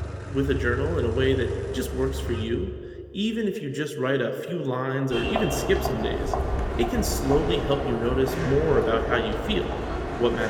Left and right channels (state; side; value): identical; both; correlation 1.00